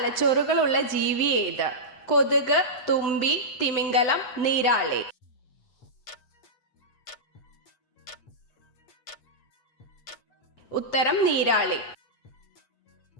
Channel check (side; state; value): right; late; 7.9 ms